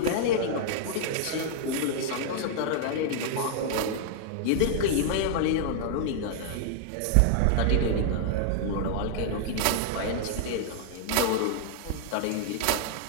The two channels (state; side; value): different; both; correlation -0.01